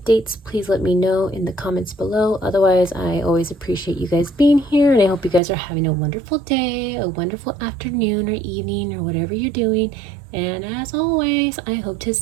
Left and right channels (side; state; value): left; drops out; at 5.4 s